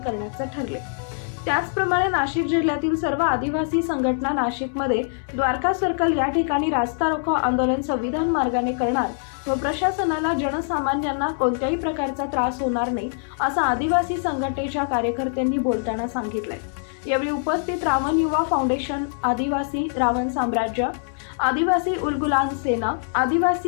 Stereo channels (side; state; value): right; silent; 63 dB below the other